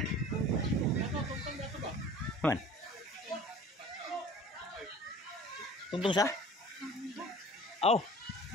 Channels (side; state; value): both; normal; correlation 0.45